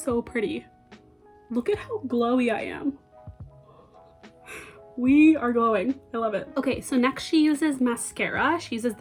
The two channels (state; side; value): identical; both; correlation 1.00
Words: pretty. Look at how glowy I am. We are glowing. I love it. Okay, so next she uses mascara. She uses